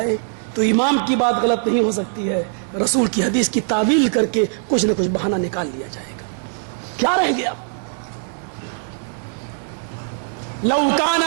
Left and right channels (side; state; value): left; silent; 65 dB below the other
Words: تو امام کی بات غلط نہیں ہو سکتی ہے، رسول کی حدیث کی تعویل کر کے کچھ نہ کچھ بہانہ نکال لیا جائے گا. کیا رہ گیا؟ لو